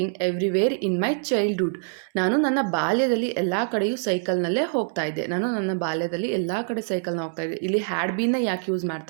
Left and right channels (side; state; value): left; silent; digital silence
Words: everywhere in my childhood. ನಾನು ನನ್ನ ಬಾಲ್ಯದಲ್ಲಿ ಎಲ್ಲ ಕಡೆಯೂ ಸೈಕಲ್ನಲ್ಲೇ ಹೋಗ್ತಾ ಇದ್ದೆ. ಇಲ್ಲಿ ಹ್ಯಾಡ್ ಬೀನ್ನ ಯಾಕೆ ಯೂಸ್